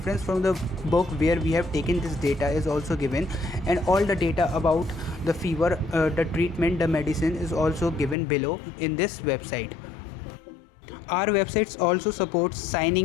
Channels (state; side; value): drops out; right; at 8.2 s